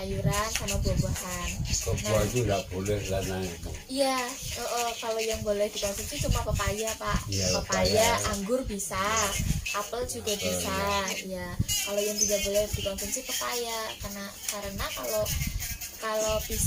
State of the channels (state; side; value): identical; both; correlation 1.00